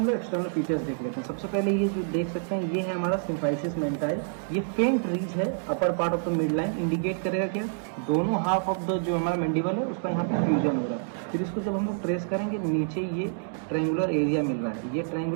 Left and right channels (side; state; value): left; silent; digital silence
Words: लोग एक्सटर्नल फीचर्स देख लेते हैं। सबसे पहले ये जो देख सकते हैं, ये है हमारा सिम्फाइसिस मेंटाइल। ये फेंट रीज है upper part of the mid line, indicate करेगा क्या, दोनों हाफ ऑफ द जो हमारा मैंडिबल है उसका यहाँ पे फ्यूजन हो रहा है। फिर इसको जब हम लोग ट्रेस करेंगे, नीचे ये ट्रायंगुलर एरिया मिल रहा है। ये